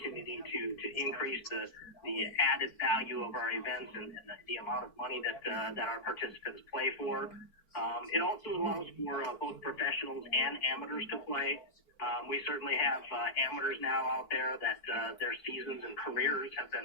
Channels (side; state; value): right; late; 4.5 ms